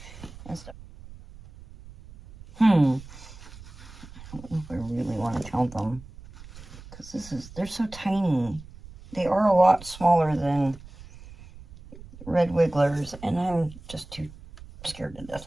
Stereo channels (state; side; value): noise; right; rumble, 18 dB below the sound